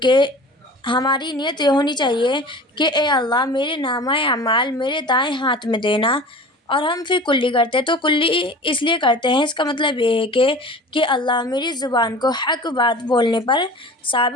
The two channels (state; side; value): normal; both; correlation 0.39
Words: ہماری نیت یہ ہونی چاہیے کہ اے اللہ میرے نامہ اعمال میرے دائیں ہاتھ میں دینا۔ اور ہم پھر کلی کرتے ہیں، تو کلی اس لیے کرتے ہیں، اس کا مطلب یہ ہے کہ اللہ میری زبان کو حق بات بولنے پر